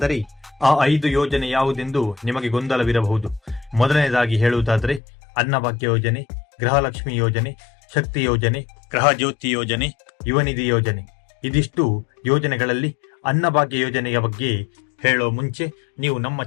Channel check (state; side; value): drops out; right; at 5.0 s